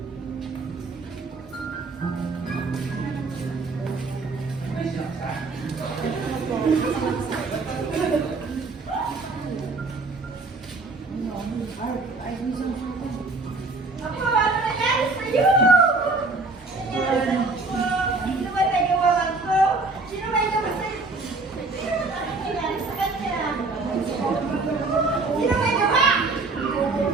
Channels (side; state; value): left; quieter; 3.6 dB